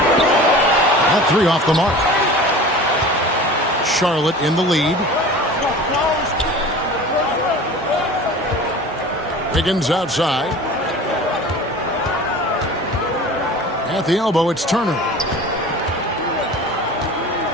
That 3 off the mark. Charlotte in the lead. Wiggins outside. At the elbow, it's Turner.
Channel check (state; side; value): normal; both; correlation 0.38